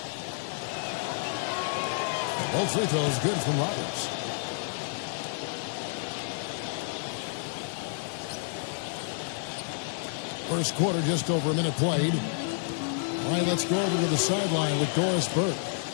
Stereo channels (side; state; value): right; silent; digital silence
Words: Both free throws good from Roberts. First quarter, just over a minute played. All right, let's go over to the sideline with Doris Burke.